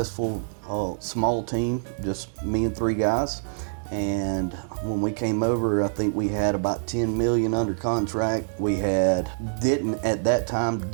small team, just me and 3 guys. And when we came over, I think we had about 10 million under contract. We didn't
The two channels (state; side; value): silent; left; digital silence